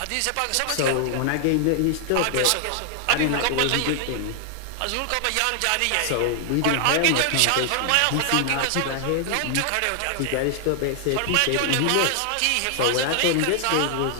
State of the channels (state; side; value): different; both; correlation 0.00